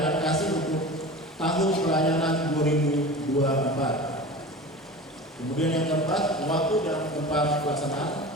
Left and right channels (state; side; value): normal; both; correlation 0.34